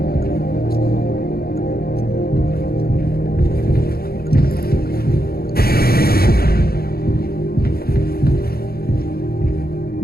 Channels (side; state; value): right; late; 0.44 ms